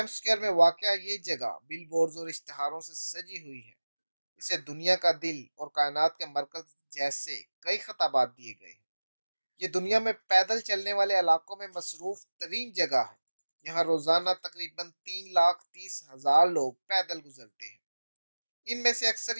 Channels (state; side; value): inverted; both; correlation -1.00